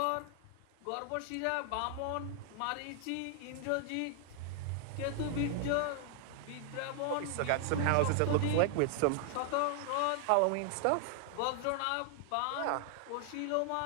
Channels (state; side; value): different; both; correlation 0.00